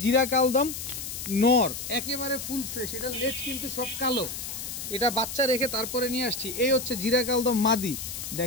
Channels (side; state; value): left; noise; hiss, 7 dB below the sound